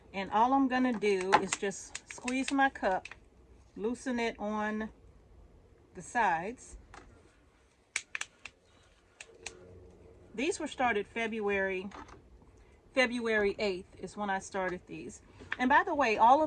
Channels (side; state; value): both; identical; correlation 1.00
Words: And all I'm going to do is just squeeze my cup, loosen it on the sides. These were started February 8th is when I started these. And by the way, all